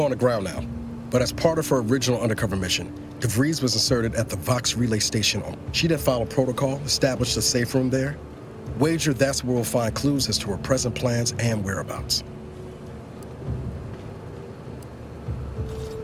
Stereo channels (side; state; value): both; identical; correlation 1.00